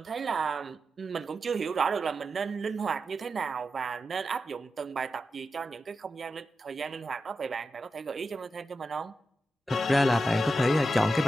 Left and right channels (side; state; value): both; normal; correlation 0.90